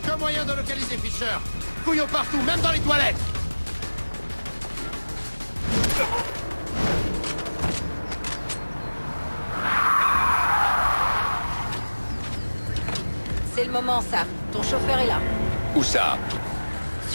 moyen de localiser Fisher. Fouillons partout, même dans les toilettes. C'est le moment, Sam. Ton chauffeur est là. Où ça?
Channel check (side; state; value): both; inverted; correlation -1.00